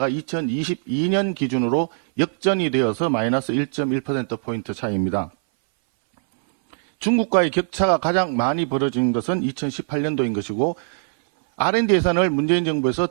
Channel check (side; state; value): left; silent; 61 dB below the other